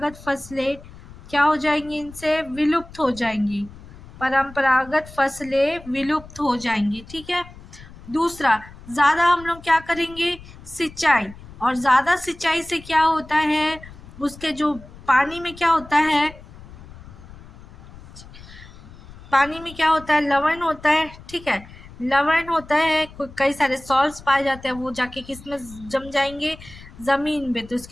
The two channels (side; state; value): left; noise; rumble, 19 dB below the sound